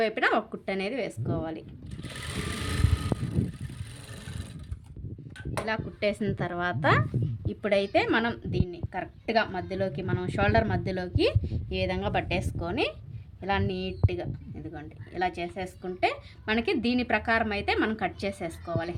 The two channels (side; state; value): both; identical; correlation 1.00